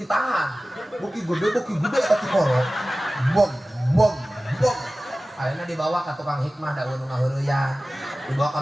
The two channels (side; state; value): both; normal; correlation 0.96